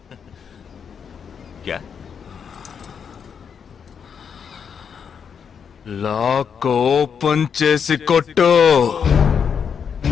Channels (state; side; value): quieter; right; 7.0 dB